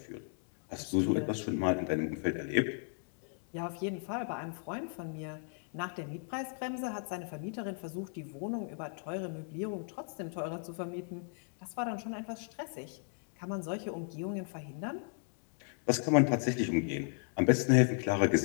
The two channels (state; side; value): silent; right; 54 dB below the other